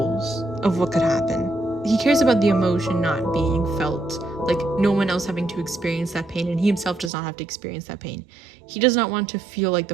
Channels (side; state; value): left; drops out; at 7.1 s